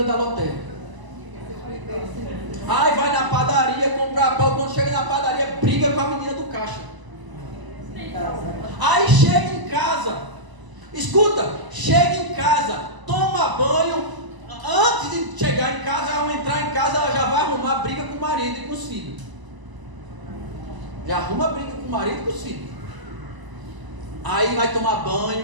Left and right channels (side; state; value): left; late; 1.0 ms